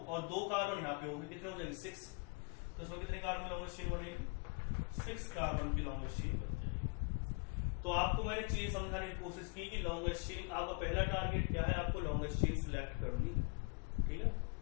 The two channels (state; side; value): quieter; right; 34.8 dB